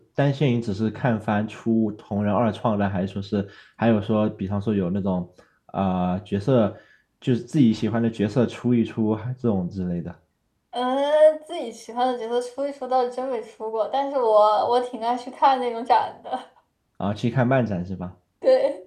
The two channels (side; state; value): both; identical; correlation 1.00